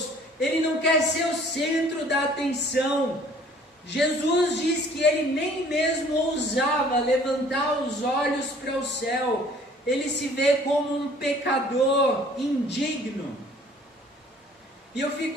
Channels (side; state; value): both; normal; correlation 0.54